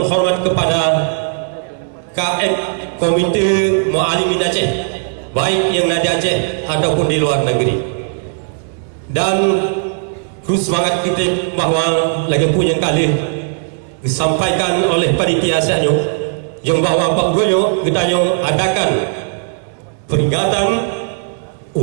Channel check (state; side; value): silent; left; digital silence